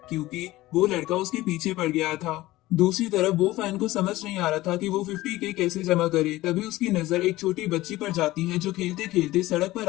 क्योंकि वो लड़का उसके पीछे पड़ गया था। दूसरी तरफ वो फैन को समझ नहीं आ रहा था कि वो 50 के कैसे जमा करे। तभी उसकी नजर एक छोटी बच्ची पर जाती है जो खेलते खेलते सड़क पर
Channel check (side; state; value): right; quieter; 17.6 dB